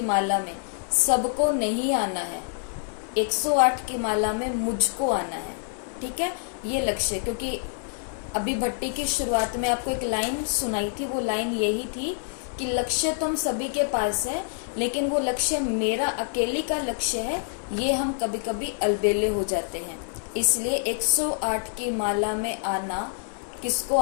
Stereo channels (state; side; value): silent; right; 61 dB below the other